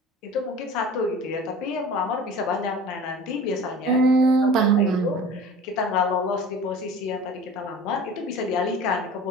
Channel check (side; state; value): both; normal; correlation 0.40